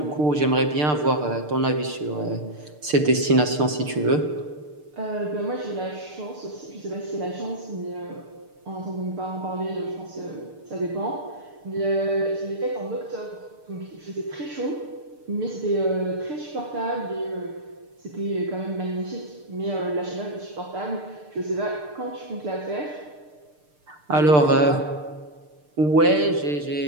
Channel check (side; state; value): left; late; 6.7 ms